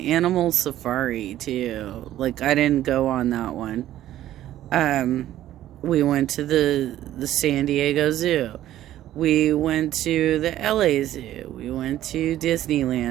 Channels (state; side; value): quieter; left; 13.1 dB